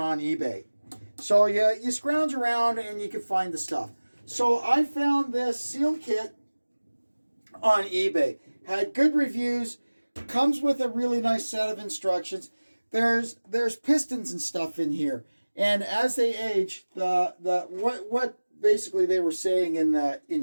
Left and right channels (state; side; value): inverted; both; correlation -1.00